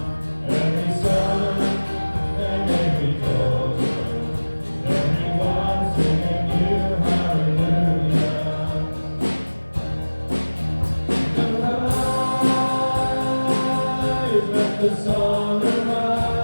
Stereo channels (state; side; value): inverted; both; correlation -1.00